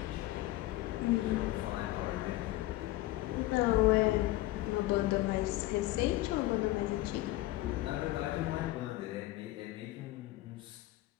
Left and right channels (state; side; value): quieter; right; 17.5 dB